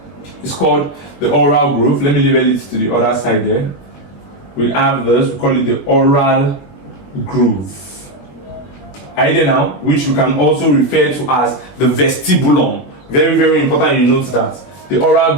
It's called the oral groove. Let me label it to the other side there. We have this, we call it the oral groove. Are you there now? Which we can also refer to as the vestibulum. Very, very important you note that. The oral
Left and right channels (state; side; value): late; right; 21 ms